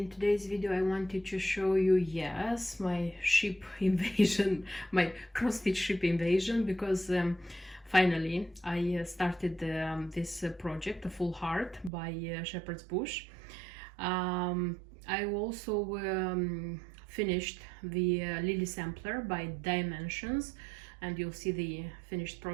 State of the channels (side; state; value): left; drops out; at 11.9 s